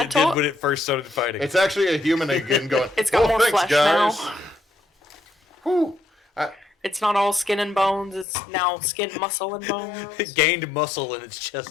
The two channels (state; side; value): drops out; right; at 8.2 s